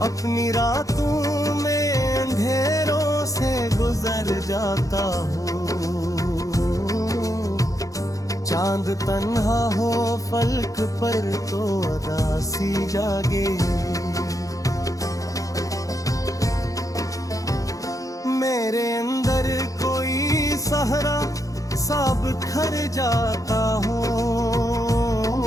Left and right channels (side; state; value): right; late; 0.16 ms